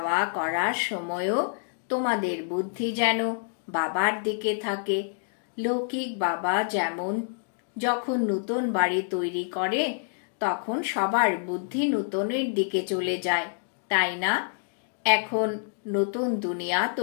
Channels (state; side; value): silent; right; digital silence